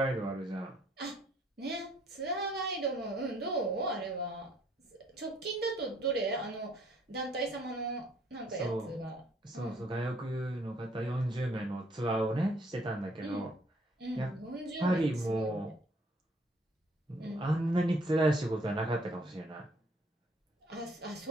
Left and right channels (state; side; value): normal; both; correlation 0.63